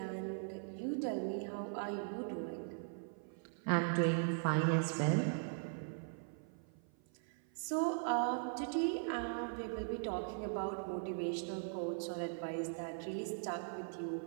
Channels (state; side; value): silent; left; 51 dB below the other